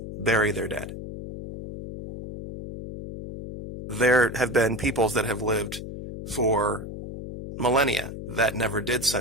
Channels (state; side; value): noise; left; hum, 9 dB below the sound